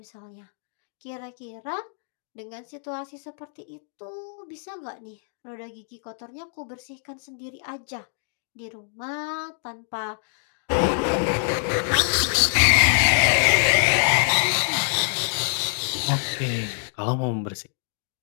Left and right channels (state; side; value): silent; right; digital silence